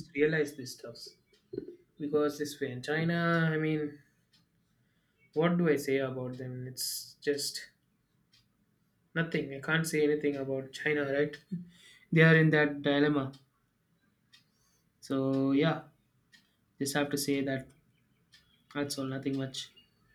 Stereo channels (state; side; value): identical; both; correlation 1.00